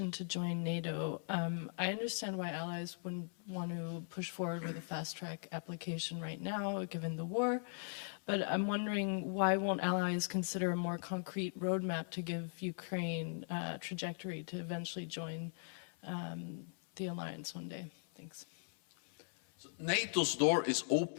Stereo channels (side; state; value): right; silent; 52 dB below the other